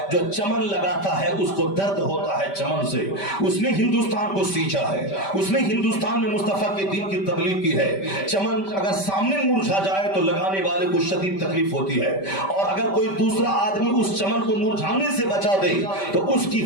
जो चमन लगाता है उसको दर्द होता है चमन से। उसने हिंदुस्तान को सींचा है, उसने हिंदुस्तान में मुस्तफा के दीन की तबलीग की है। चमन अगर सामने मुरझा जाए तो लगाने वाले को शदीद तकलीफ होती है, और अगर कोई दूसरा आदमी उस चमन को मुरझाने से बचा दे तो उसकी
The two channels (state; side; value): late; right; 5.1 ms